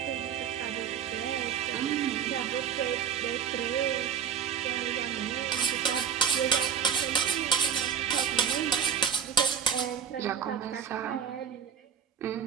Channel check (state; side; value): quieter; left; 7.8 dB